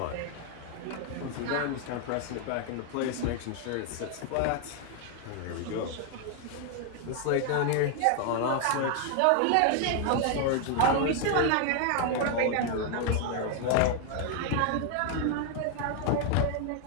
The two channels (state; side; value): different; both; correlation 0.00